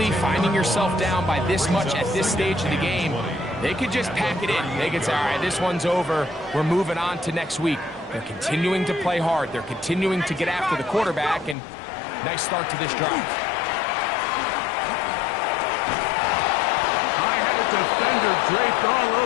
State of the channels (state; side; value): drops out; right; at 11.6 s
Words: finding yourself down by this much at this stage of the game, they could just pack it in. They could say, all right, this one's over. We're moving on to next week. They're continuing to play hard. They're continuing to get after the quarterback, and nice start to this drive. Defender draped all